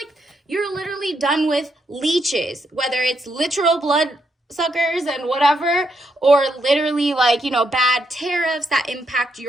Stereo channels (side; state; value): both; normal; correlation 0.78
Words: you're literally done with leeches, whether it's literal blood suckers and whatever, or literally like, you know, bad tariffs that impact